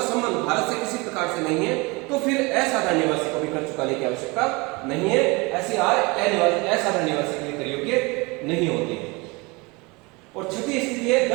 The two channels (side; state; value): left; quieter; 26.0 dB